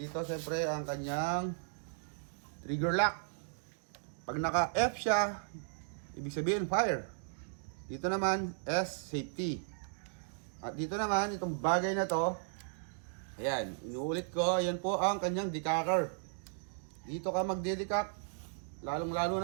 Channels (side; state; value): left; silent; digital silence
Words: siyempre, ang kanyang trigger lock. Pag naka-F siya, ibig sabihin fire. Dito naman, S, safety. At dito naman, itong bagay na to, ayan, inuulit ko, yan po ang kanyang decacker. Dito ka magde-decack, lalong-lalo